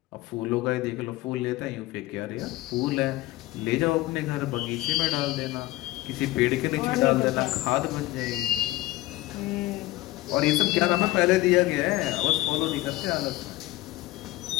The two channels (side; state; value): right; quieter; 17.8 dB